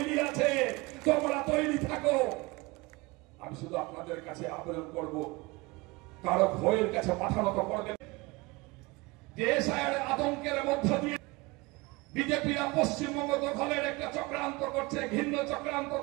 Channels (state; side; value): quieter; left; 23.9 dB